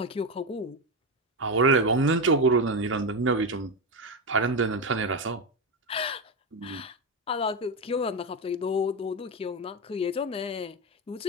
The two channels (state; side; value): normal; both; correlation 0.12